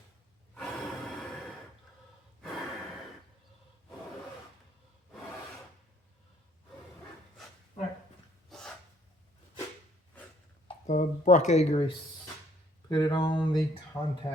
Right. The bracket grease. Put it on the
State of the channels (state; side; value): normal; both; correlation 0.64